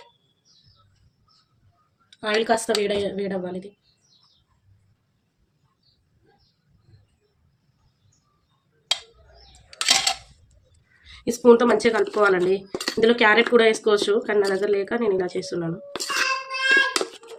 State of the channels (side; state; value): both; identical; correlation 1.00